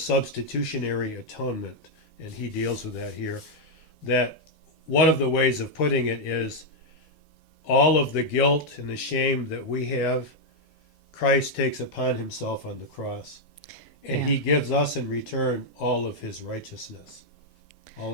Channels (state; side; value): late; right; 10 ms